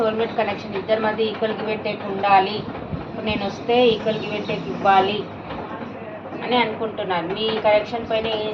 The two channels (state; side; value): identical; both; correlation 1.00